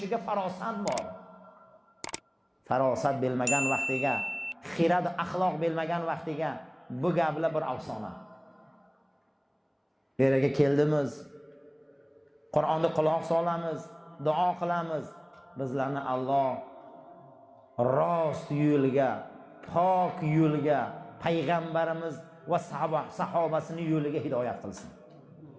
farosat bor. Farosat bilmagan vaqtiga, xirad axloq bilmagan vaqtiga bu gaplar bir afsona. Bu yerga keldimiz, Qur'onni quloq solamiz, duo qilamiz. Bizlarni Alloh rost yo'lga, pok yo'lga, payg'ambarimiz va sahobasini yo'liga hidoyat qilsin.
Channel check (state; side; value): identical; both; correlation 1.00